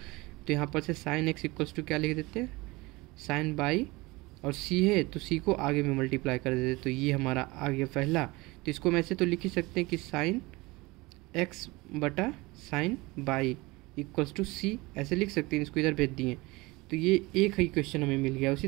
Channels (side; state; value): left; quieter; 22.6 dB